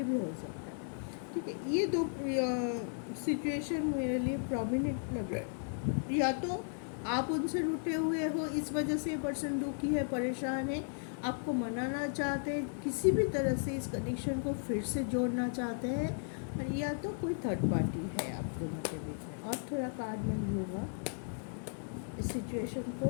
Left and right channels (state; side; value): silent; right; digital silence